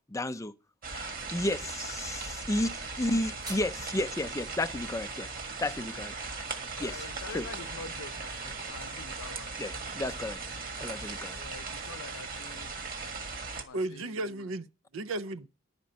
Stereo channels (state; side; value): normal; both; correlation 0.44